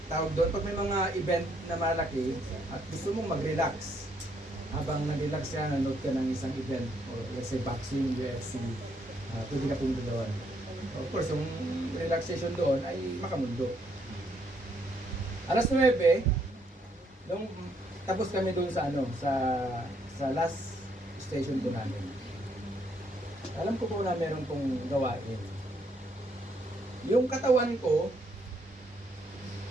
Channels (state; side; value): normal; both; correlation 0.72